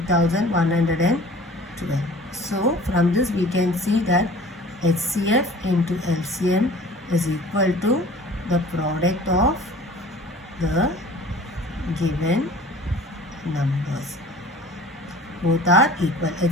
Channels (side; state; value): both; normal; correlation 0.46